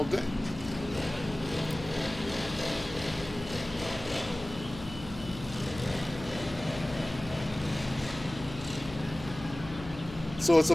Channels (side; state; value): left; noise; hum, 13 dB below the sound